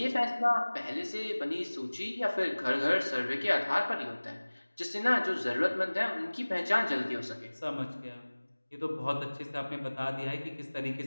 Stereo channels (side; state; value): both; inverted; correlation -1.00